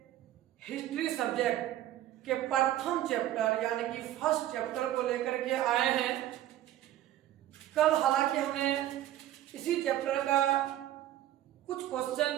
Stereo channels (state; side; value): quieter; left; 13.2 dB